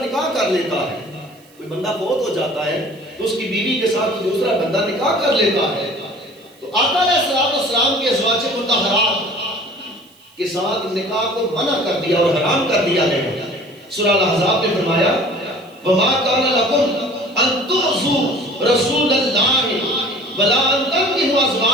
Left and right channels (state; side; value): noise; right; hiss, 29 dB below the sound